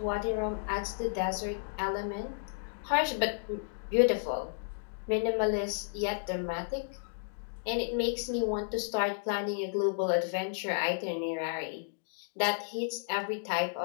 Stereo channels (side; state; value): right; silent; digital silence